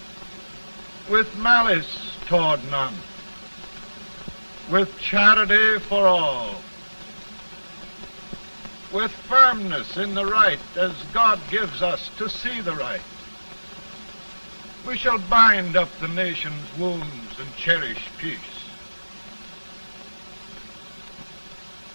with malice toward none, with charity for all, with firmness in the right as God gives us to see the right, we shall bind up the nation's wounds and cherish peace.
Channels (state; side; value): inverted; both; correlation -1.00